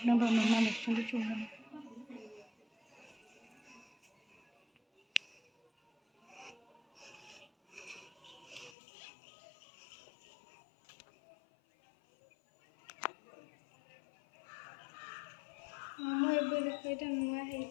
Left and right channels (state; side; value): drops out; right; at 8.8 s